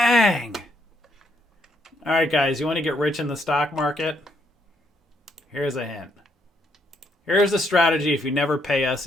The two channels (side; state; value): both; normal; correlation 0.73